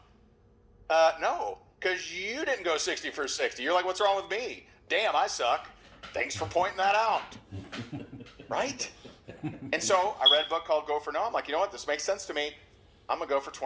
No, because you didn't go 60 for 60. You're like, what's wrong with me? Damn, I suck. Thanks for pointing that out, right? And so I read a book called Go for No. I'm like, you know what? This makes sense to me. I'm going to go for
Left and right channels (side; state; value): both; identical; correlation 1.00